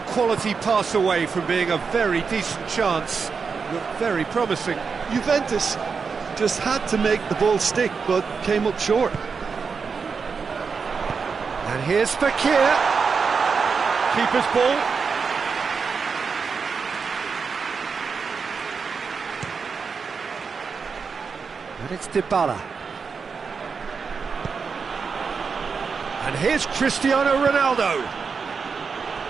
quality pass away from being a very decent chance. Looked very promising. Juventus just had to make the ball stick, but came up short. And here's Fekir. Keeper's ball. And it's Dybala. And here's Cristiano Ronaldo.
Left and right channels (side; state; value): left; quieter; 5.4 dB